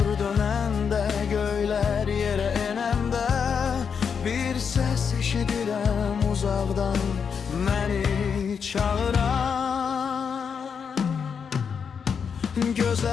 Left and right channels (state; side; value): quieter; right; 6.6 dB